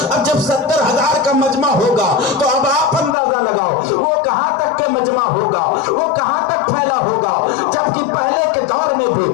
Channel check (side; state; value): right; drops out; at 3.2 s